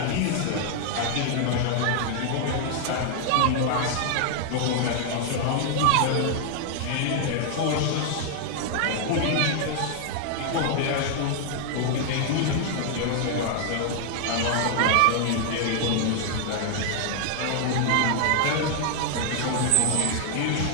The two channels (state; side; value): different; both; correlation 0.00